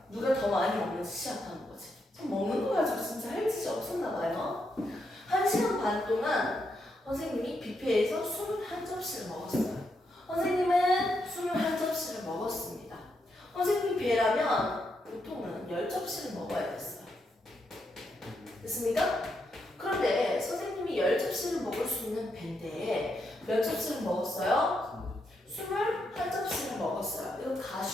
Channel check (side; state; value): both; normal; correlation 0.81